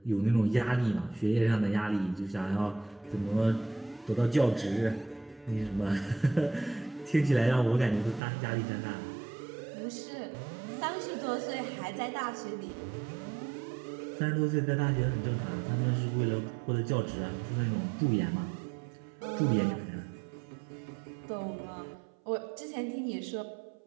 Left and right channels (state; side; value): drops out; left; at 8.2 s